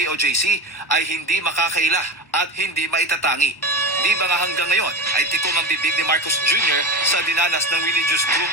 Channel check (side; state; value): right; late; 1.1 ms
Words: ay hindi makakaila at hindi maitatangi. Di ba nga hanggang ngayon ay tikom ang bibig ni Marcos Jr. sa dinanas ng religious group